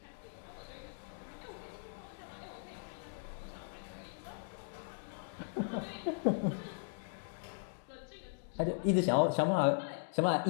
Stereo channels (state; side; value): silent; right; digital silence